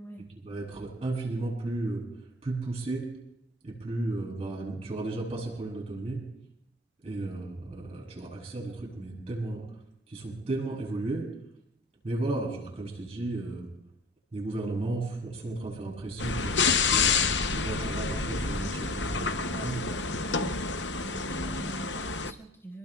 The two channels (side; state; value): both; normal; correlation 0.43